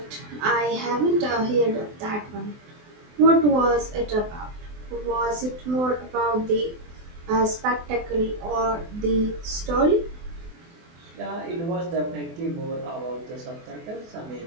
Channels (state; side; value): late; left; 24 ms